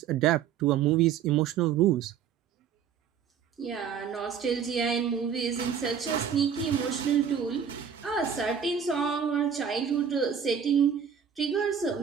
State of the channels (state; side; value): quieter; left; 7.7 dB